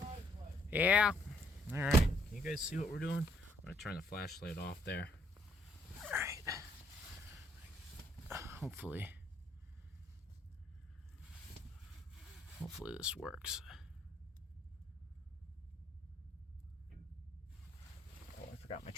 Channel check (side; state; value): both; normal; correlation 0.69